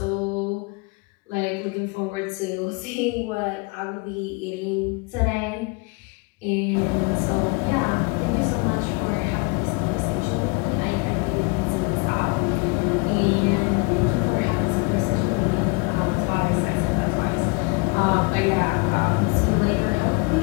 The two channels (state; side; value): quieter; right; 29.4 dB